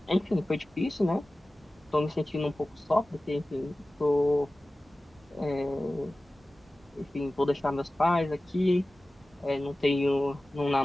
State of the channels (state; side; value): normal; both; correlation 0.96